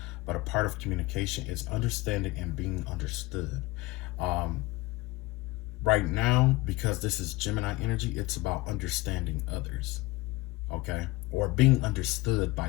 but a part of communication is understanding and being understood. Right now, because this is Gemini energy, it's about understanding others, okay, or being understood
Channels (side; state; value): right; quieter; 20.6 dB